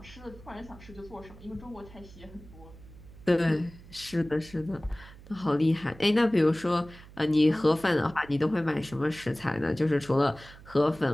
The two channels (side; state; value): right; noise; hum, 19 dB below the sound